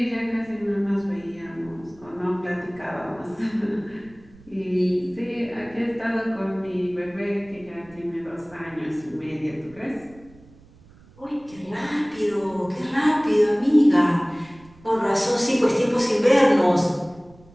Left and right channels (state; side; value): noise; right; rumble, 25 dB below the sound